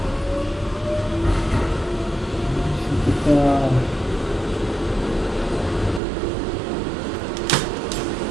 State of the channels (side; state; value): left; drops out; at 6.0 s